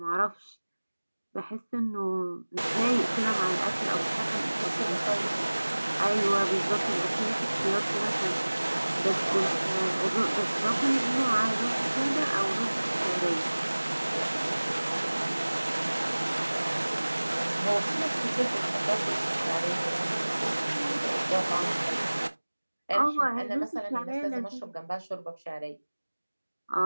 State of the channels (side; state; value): both; inverted; correlation -1.00